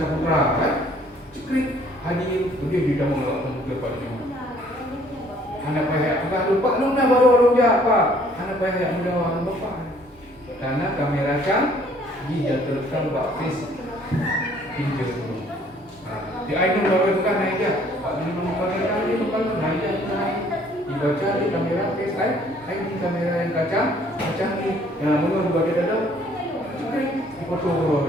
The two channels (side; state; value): both; normal; correlation 0.60